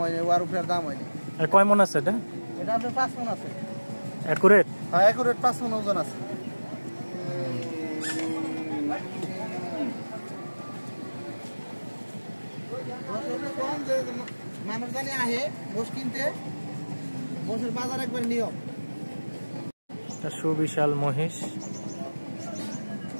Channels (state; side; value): inverted; both; correlation -1.00